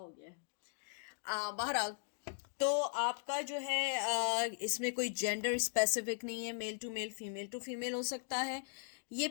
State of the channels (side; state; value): right; silent; digital silence